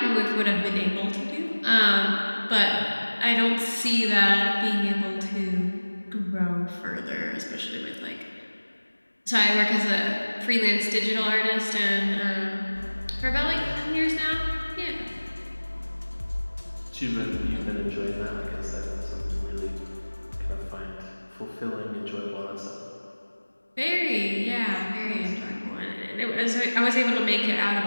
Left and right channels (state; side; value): inverted; both; correlation -1.00